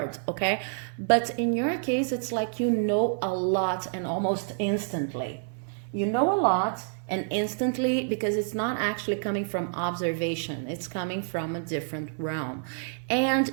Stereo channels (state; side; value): silent; left; 59 dB below the other